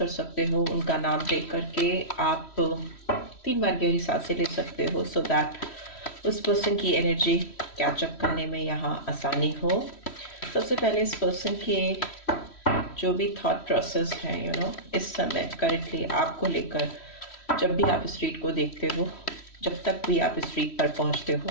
सकते हो। उनका नाम देख करके आप 3 बार गहरी सांसें ले सकते हो, सो दैट उस पर्सन की एनर्जी कैचअप करने में यहाँ आसानी हो। सबसे पहले इस पर्सन के जो भी थॉट प्रोसेस है इस समय करेंटली आपको लेकर, जब भी आप इस रीड को देखते हो, जब तक भी आप इस रीड पर पहुँचते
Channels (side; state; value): right; late; 3.1 ms